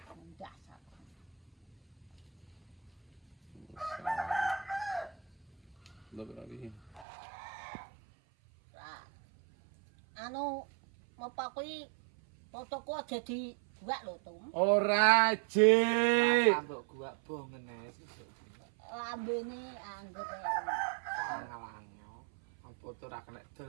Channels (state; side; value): drops out; left; at 7.1 s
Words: Dasar. Lho berarti. Lah. Anu apa kuwi fotoku aja dibuat lho, Tum. Ora, Jik. Sambok gua bongen ae sesuk. Lambene anggur. Ngalanyo. Apa tuh ra kena